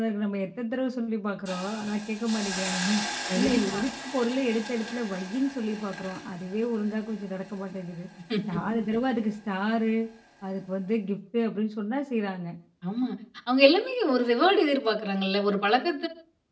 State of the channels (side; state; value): both; identical; correlation 1.00